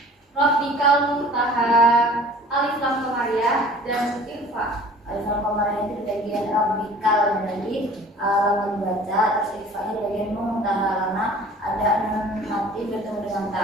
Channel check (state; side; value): normal; both; correlation 0.47